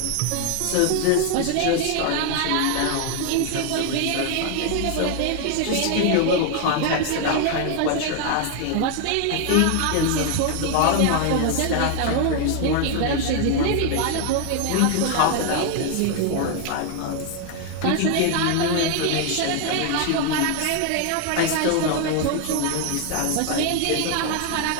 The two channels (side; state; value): both; different; correlation 0.00